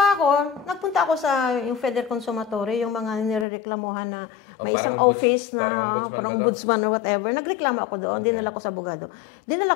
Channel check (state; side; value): drops out; right; at 3.5 s